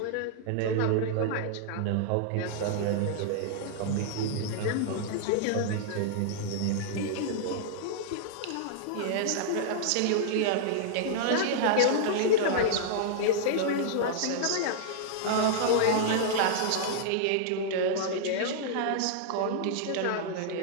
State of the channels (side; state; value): both; different; correlation -0.01